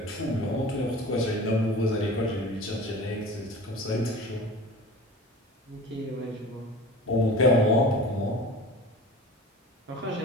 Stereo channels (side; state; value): both; normal; correlation 0.38